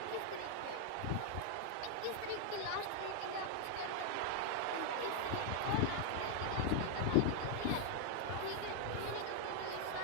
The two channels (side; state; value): both; different; correlation 0.00